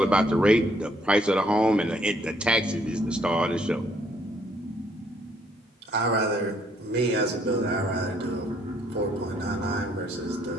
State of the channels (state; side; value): normal; both; correlation 0.67